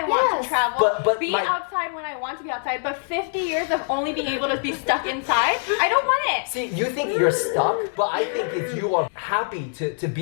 want Yes. to travel, But be my- outside when I want to be outside. But 50 years of only being able to be stuck inside, I don't want it. See, you think you're stuck, but I think if you are happy to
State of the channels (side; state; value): right; silent; digital silence